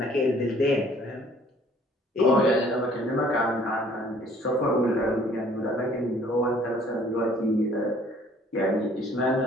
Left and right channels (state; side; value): normal; both; correlation 0.57